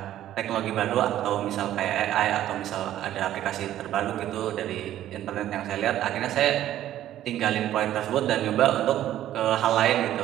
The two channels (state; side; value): quieter; left; 12.6 dB